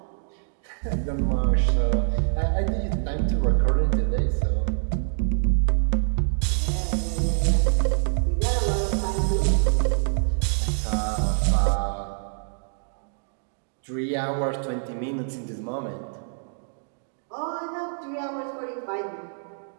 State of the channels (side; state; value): left; silent; digital silence